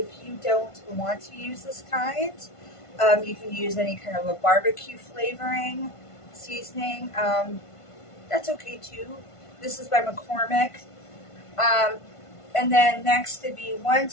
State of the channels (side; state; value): right; late; 1.5 ms